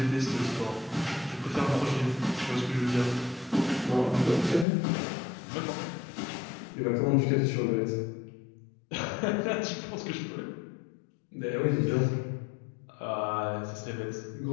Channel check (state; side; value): drops out; right; at 4.7 s